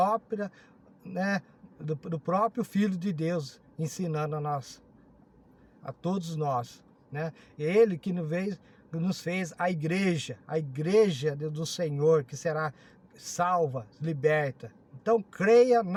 né? Do próprio Filho de Deus, ensinando a nós, a todos nós, né? Ele que nos fez a igreja do Senhor, que será salva, liberta. Então creia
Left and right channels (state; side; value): identical; both; correlation 1.00